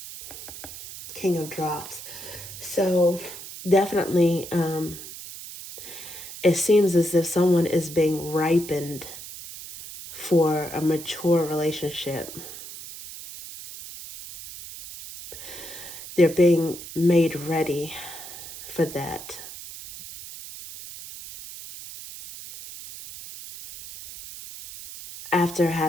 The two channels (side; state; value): right; noise; hiss, 12 dB below the sound